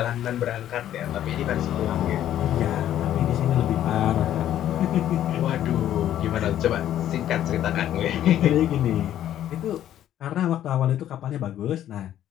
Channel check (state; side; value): quieter; right; 11.6 dB